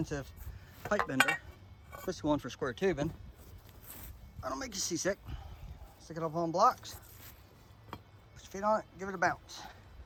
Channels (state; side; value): identical; both; correlation 1.00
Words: pipe bender, especially one for square tubing, I don't make you seasick. Stick it up on blocks, put your feet on it, give it a bounce.